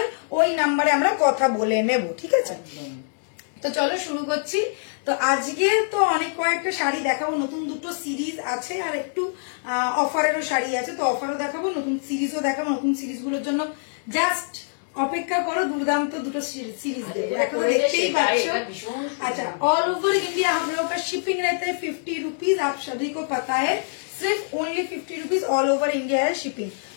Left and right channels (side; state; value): right; silent; digital silence